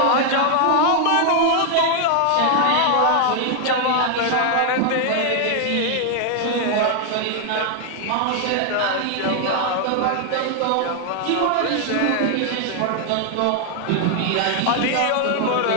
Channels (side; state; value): both; different; correlation 0.00